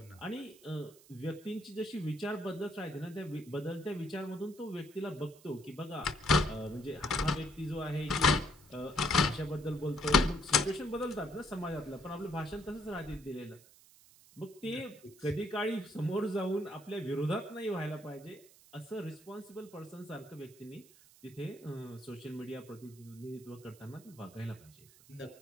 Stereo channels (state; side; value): noise; right; hiss, 24 dB below the sound